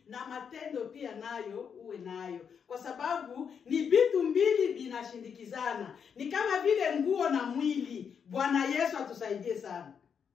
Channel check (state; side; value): quieter; right; 7.0 dB